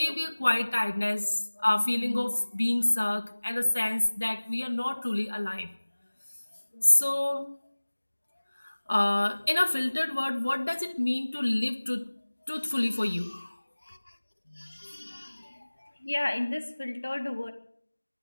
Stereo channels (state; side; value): inverted; both; correlation -1.00